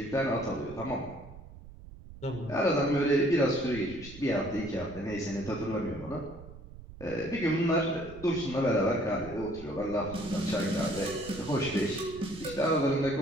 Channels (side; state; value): right; noise; rumble, 16 dB below the sound